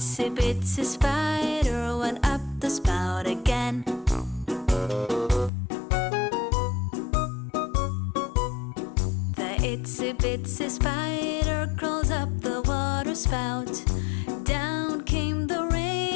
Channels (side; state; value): right; drops out; at 5.5 s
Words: bitsy spider went up the spout again. The itsy bitsy spider crawled up the water spout. Down came the